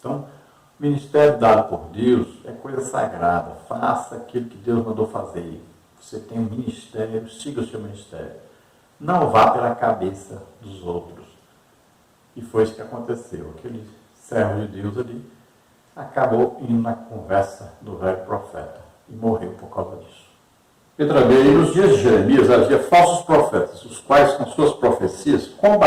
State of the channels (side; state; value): both; identical; correlation 1.00